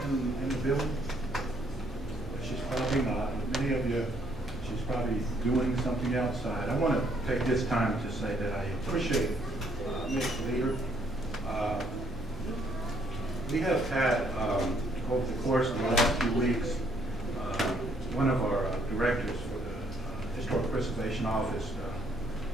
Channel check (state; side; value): normal; both; correlation 0.68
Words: in the building? She's probably not. Many of you, she's probably doing something outside. I want to take this time to say that I appreciate Ms. Leader. We have had, over the course of the last few weeks, one of our directors for the Historic Preservation Office